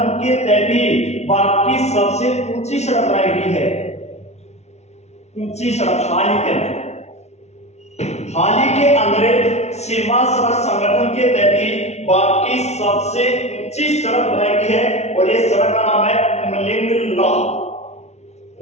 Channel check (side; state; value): right; late; 0.32 ms